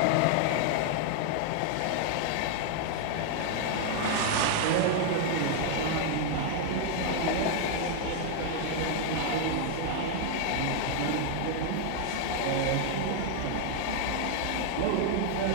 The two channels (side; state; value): both; different; correlation 0.00